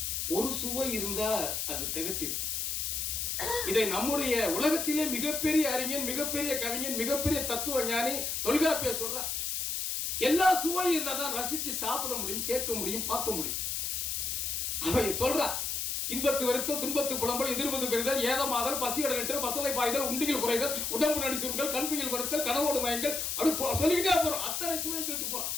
ஒரு சுவை இருந்தா அது திகட்டிடும். இதை நம்முடைய உலகத்திலே மிகப்பெரிய அறிஞன், மிகப்பெரிய கவிஞன், மிகப்பெரிய தத்துவ ஞானி தொல்காப்பியர் சொல்றார். எல்லா சுவையும் இருந்தா தான் ரசிச்சு சாப்பிட முடியும், கேட்க முடியும், பார்க்க முடியும். அவை சொல்றார், இன்பத்து வருத்தல், துன்பத்து புலம்பல், எதிர்ப்பது பெறுதல், ஏதமாதல், பசியோட நெற்றல், பசலை பாய்தல், உண்டிகள் குறைதல், உடம்பு நடி சுருங்கள், கண்துயில் படுத்தல், கனவோடு மயங்கள், அப்படி சொல்லிக்கிட்டே போறோம். அத்தனை சுவையை சொல்லிட்டு போறோம்.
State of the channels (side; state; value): left; noise; hiss, 1 dB below the sound